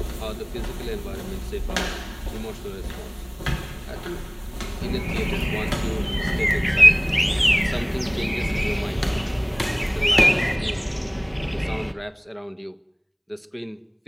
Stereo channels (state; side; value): identical; both; correlation 1.00